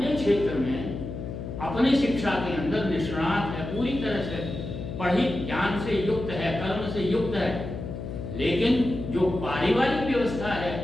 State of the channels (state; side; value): noise; left; hum, 7 dB below the sound